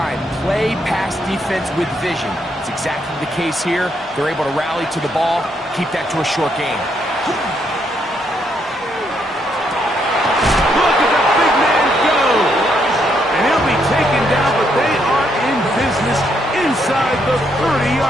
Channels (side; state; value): both; normal; correlation 0.75